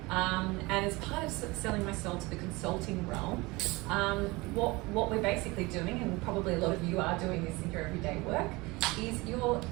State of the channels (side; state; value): left; quieter; 23.1 dB